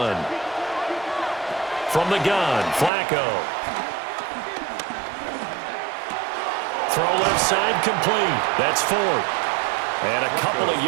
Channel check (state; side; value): drops out; left; at 2.9 s